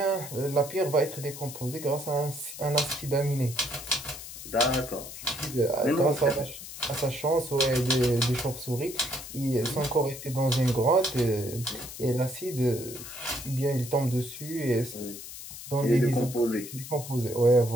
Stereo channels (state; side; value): noise; left; hiss, 12 dB below the sound